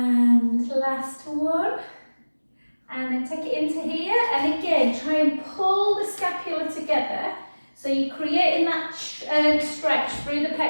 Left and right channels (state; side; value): inverted; both; correlation -1.00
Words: last one. And then take it into here. And again, try and pull the scapula together. So you're creating that stretch through the